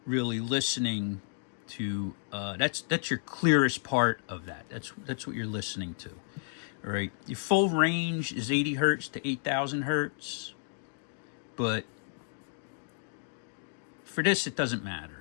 really listening to. That's your clearest part of that. That's what you're listening to. All right. Your full range is 80 hertz to 8000 hertz, but for this it doesn't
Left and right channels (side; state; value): right; silent; 57 dB below the other